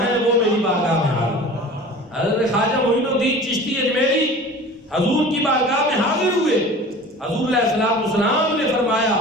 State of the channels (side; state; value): both; normal; correlation 0.40